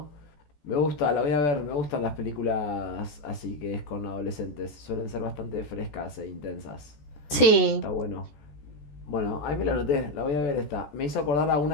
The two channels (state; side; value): late; right; 14 ms